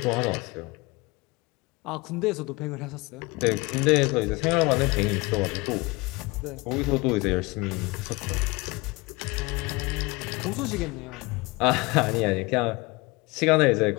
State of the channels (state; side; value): quieter; right; 24.6 dB